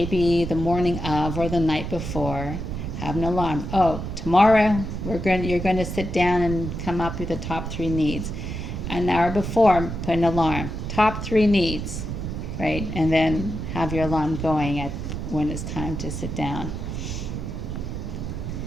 the morning of or the night before, have an alarm. Oh, tomorrow you're going to sit down and come up with the top 3 needs. An hour before, put an alarm. Top 3 needs, right? And then have your alarm going at when it's time to sit down.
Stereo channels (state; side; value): noise; right; rumble, 5 dB below the sound